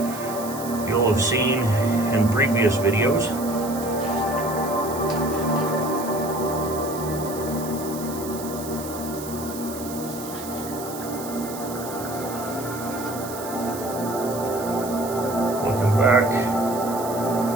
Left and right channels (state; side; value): noise; right; hiss, 12 dB below the sound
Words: you'll have seen in previous videos. Looking back,